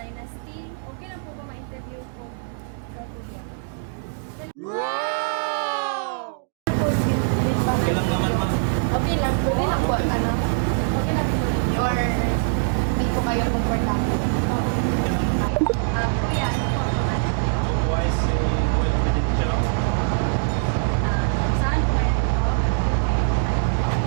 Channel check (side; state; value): left; silent; digital silence